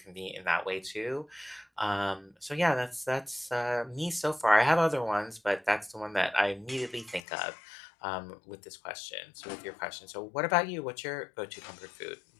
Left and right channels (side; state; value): right; drops out; at 7.2 s